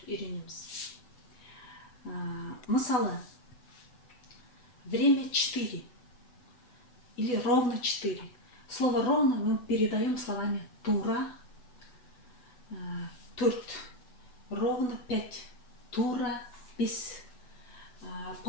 үйренеміз. Мысалы, время 4 или ровно 4. Слово ровно мы передаем словами тура, турт, ровно 5. Тура, бес.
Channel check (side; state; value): right; late; 8.0 ms